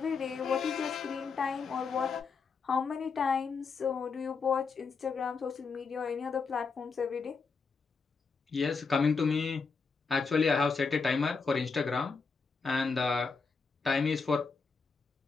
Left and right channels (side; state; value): right; quieter; 4.9 dB